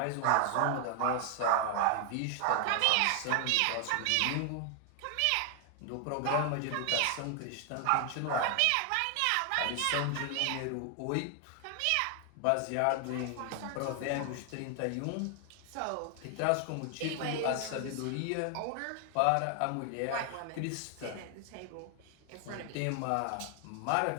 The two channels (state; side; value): different; both; correlation 0.00